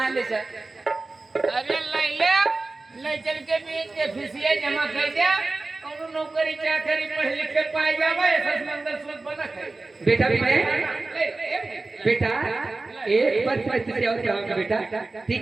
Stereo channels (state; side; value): quieter; left; 3.4 dB